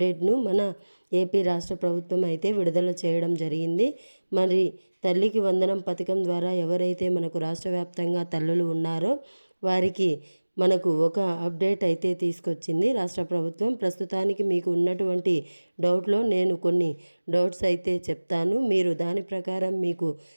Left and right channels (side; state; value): both; inverted; correlation -1.00